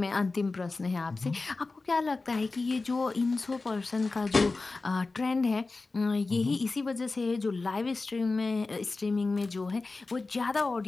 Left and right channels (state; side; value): quieter; right; 3.6 dB